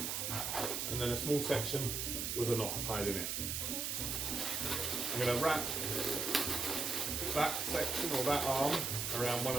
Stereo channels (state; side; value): noise; right; hiss, 1 dB below the sound